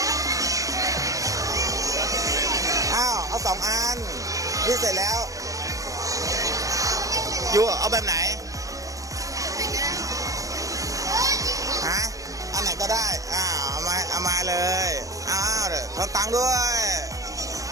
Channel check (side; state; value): left; late; 0.16 ms